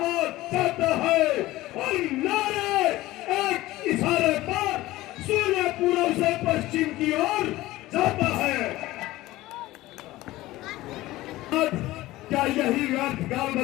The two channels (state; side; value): quieter; right; 17.5 dB